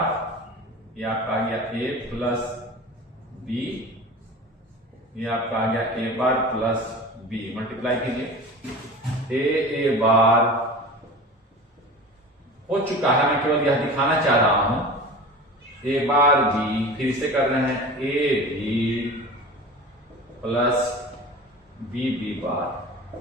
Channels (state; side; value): normal; both; correlation 0.35